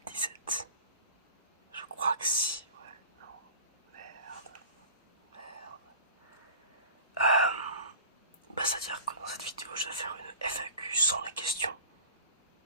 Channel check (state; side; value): inverted; both; correlation -0.40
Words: Je crois que si, ouais, non, merde, merde. C'est-à-dire que dans cette vidéo, je vais faire une FAQ sans les questions.